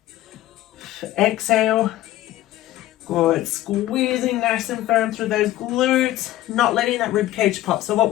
Exhale. Good, squeezing nice and firm through those glutes, not letting that rib cage pop. So what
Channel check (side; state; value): right; quieter; 15.0 dB